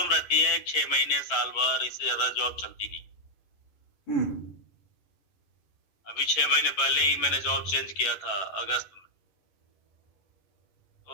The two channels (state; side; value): late; right; 11 ms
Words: रहती है, 6 महीने साल भर, इससे ज्यादा जॉब चलती नहीं। अभी 6 महीने पहले ही मैंने जॉब चेंज किया था, अगस्त में।